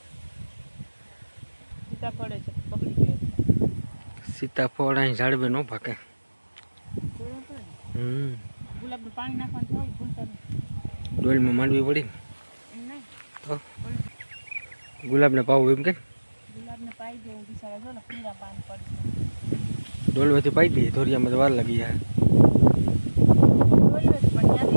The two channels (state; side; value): inverted; both; correlation -1.00